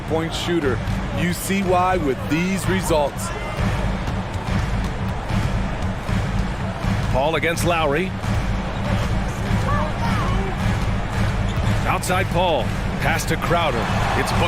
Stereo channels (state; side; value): identical; both; correlation 1.00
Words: shooter. You see why with these results. Paul against Lowry. Outside Paul. Pass to Crowder. It's